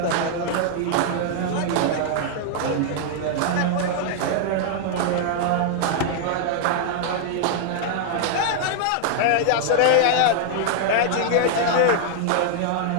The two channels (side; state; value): both; different; correlation -0.01